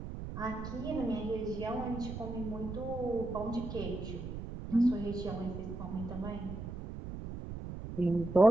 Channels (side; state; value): right; noise; rumble, 8 dB below the sound